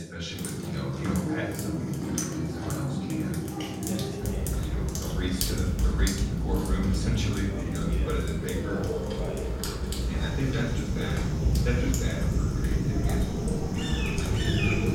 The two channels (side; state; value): both; identical; correlation 1.00